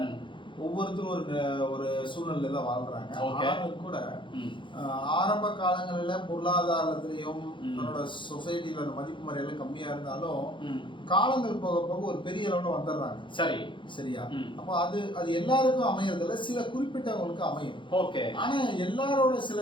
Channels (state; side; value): late; right; 0.24 ms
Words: ஒவ்வொருத்தரும் ஒரு சூழ்நிலை தான் வாழ்றாங்க. ஆனாலும் கூட ஆரம்ப காலங்களில் பொருளாதாரத்திலையும் தன்னோட சொசைட்டில அந்த மதிப்பு மரியாதை கம்மியா இருந்தாலும் காலங்கள் போக போக ஒரு பெரிய அளவுல வந்துடுறாங்க. சரி, சரியா? அப்போ அது எல்லாருக்கும் அமையறதுல சில குறிப்பிட்டவங்களுக்கு அமையும். ஓகே. ஆனா எல்லாரோட சில